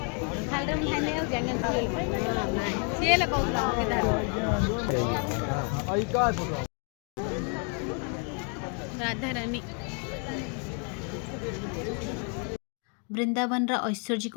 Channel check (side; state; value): right; quieter; 40.0 dB